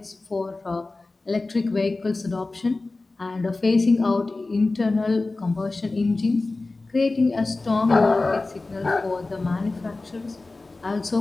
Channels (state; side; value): quieter; right; 3.3 dB